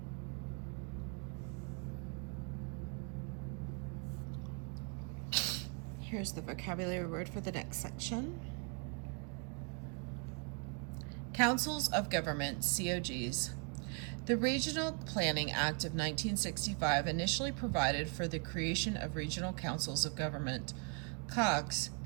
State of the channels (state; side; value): quieter; left; 35.9 dB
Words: Here's the vocabulary word for the next section. Councils of Government, COGs. The Regional Planning Act of 1965 initially provided for the creation of regional councils of government, COGS,